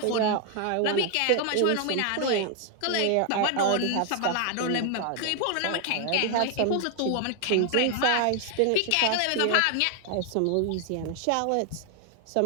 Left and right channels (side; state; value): both; different; correlation 0.00